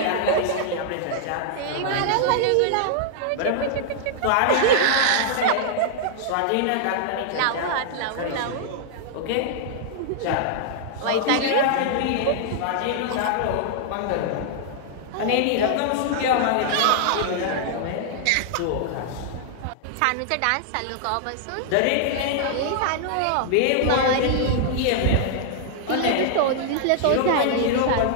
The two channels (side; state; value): both; different; correlation -0.01